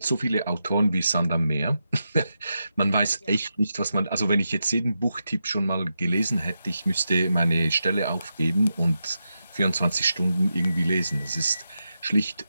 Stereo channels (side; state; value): both; inverted; correlation -0.87